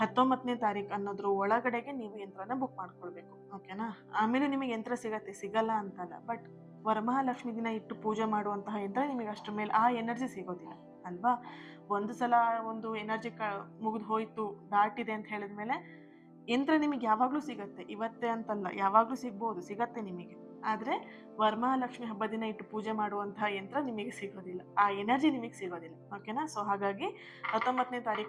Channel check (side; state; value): both; identical; correlation 1.00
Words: ತಾರೀಕು ಅನ್ನೋದ್ರ ಒಳಗಡೆಗೆ ನೀವು ಯಂತ್ರನ ಬುಕ್ ಮಾಡ್ಕೊಳ್ಬೇಕು. ಓಕೆನಾ. ಆಮೇಲೆ ನಿಮಗೆ ಯಂತ್ರ ಸಿಗಲ್ಲ ಅಂತಲ್ಲ, ಬಟ್ ವರಮಹಾಲಕ್ಷ್ಮಿ ದಿನ ಇಟ್ಟು ಪೂಜೆ ಮಾಡುವಂತಹ ಯಂತ್ರ ನಿಮಗೆ ಅಷ್ಟರ ಮೇಲೆ ಆ ಎನರ್ಜಿ ಸಿಗೋದಿಲ್ಲ ಅಲ್ವಾ. ಒಂದು ಸಲ ಒಂದು ಎನರ್ಜಿ ಮುಗಿದು ಹೋಯ್ತು, ದಾಟಿದೆ ಅಂತ ಹೇಳಿದ್ಮೇಲೆ ಯಂತ್ರ ನಿಮಗೆ ಯಾವಾಗಲೂ ಸಿಗತ್ತೆ. ಇವತ್ತೇ ಅಂತಲ್ಲ, ಯಾವಾಗಲೂ ಸಿಗತ್ತೆ ನಿಮಗೆ. ಆದರೆ ವರಮಹಾಲಕ್ಷ್ಮಿ ಹಬ್ಬ ದಿನ ಇಟ್ಟು ಪೂಜೆ ಮಾಡುವಂತಹ ಯಂತ್ರ ನಿಮಗೆ ಸಿಗೋದಿಲ್ಲ, ಆ ಎನರ್ಜಿ ನಿಮಗೆ ಸಿಗೋದಿಲ್ಲ. ಓಕೆನಾ. ಸೊ ಹಾಗಾಗಿ 19ನೇ